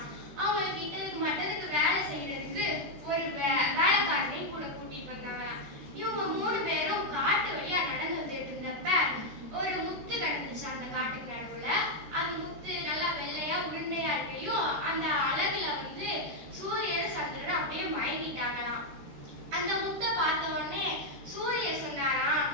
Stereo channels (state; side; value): late; left; 14 ms